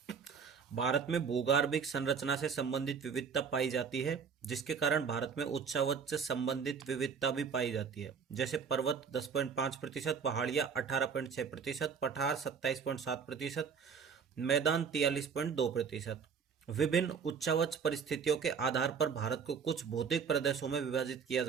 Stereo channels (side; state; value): left; quieter; 6.2 dB